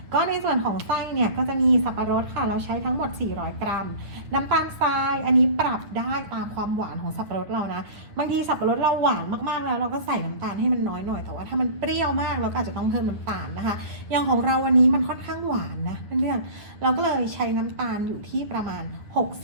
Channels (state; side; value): late; left; 9.3 ms